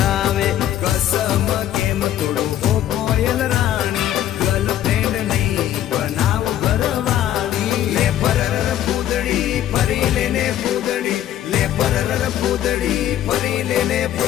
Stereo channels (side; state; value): right; quieter; 11.9 dB